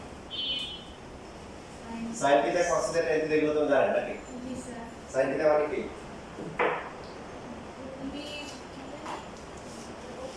sine theta cos theta tan theta এগুলো তো জানেন নাকি জি স্যার সাইন থিটা মানে কি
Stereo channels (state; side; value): identical; both; correlation 1.00